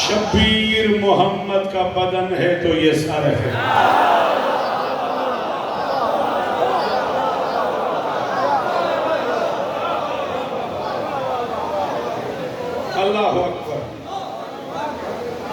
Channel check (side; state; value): both; identical; correlation 1.00